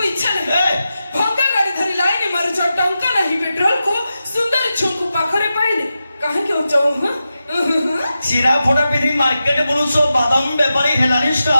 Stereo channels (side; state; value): both; inverted; correlation -0.91